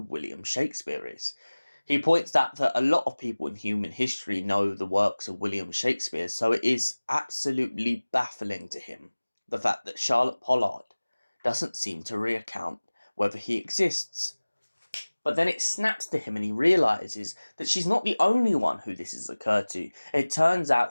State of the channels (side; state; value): both; inverted; correlation -1.00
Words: William Shakespeare is. He points out that a lot of people in human history know the works of William Shakespeare, so it is absolutely baffling to him the fact that Charlotte Pollard doesn't seem to recount whether he exists. But then it snaps to him and he realises that she's not the only one who this has occurred to. It turns